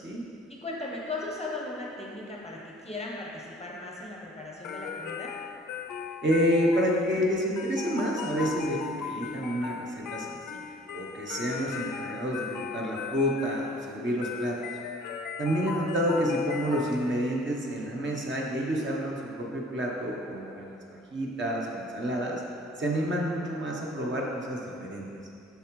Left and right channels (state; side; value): normal; both; correlation 0.52